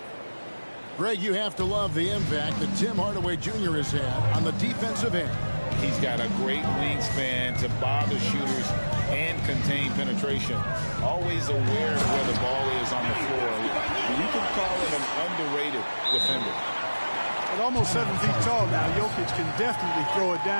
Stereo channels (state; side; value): inverted; both; correlation -1.00